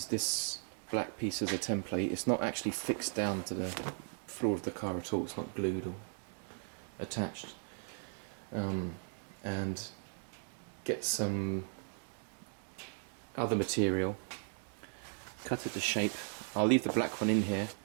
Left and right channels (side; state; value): left; silent; 53 dB below the other